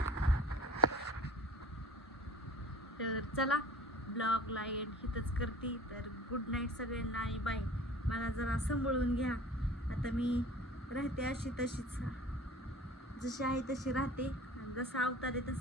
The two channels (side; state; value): both; normal; correlation 0.43